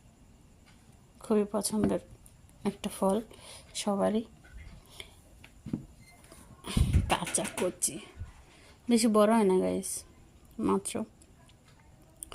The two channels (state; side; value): identical; both; correlation 1.00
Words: খুবই পছন্দের একটা ফল সবারই। কাঁচা কচি, বেশি বড় হয় না গাইস, মাত্র।